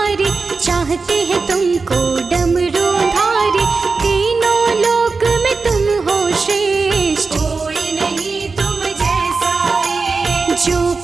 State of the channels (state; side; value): quieter; left; 4.3 dB